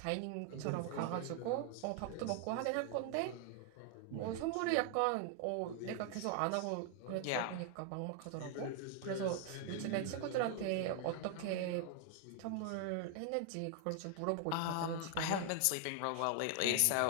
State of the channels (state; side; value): different; both; correlation 0.00